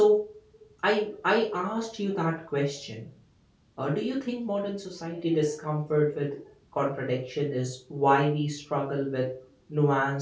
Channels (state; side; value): identical; both; correlation 1.00